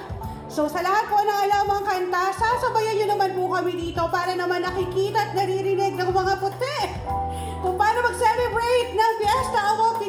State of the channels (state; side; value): identical; both; correlation 1.00